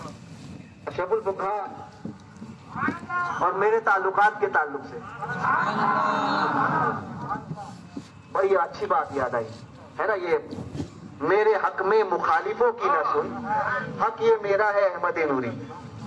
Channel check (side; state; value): both; identical; correlation 1.00